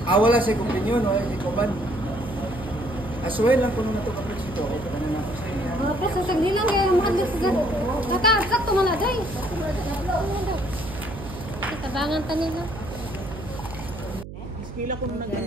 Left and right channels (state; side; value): noise; right; hum, 12 dB below the sound